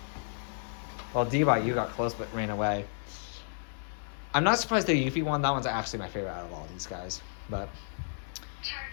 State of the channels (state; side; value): silent; right; digital silence